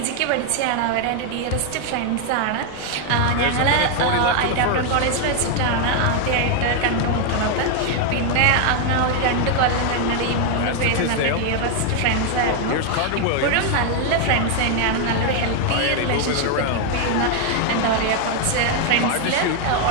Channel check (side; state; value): both; different; correlation 0.01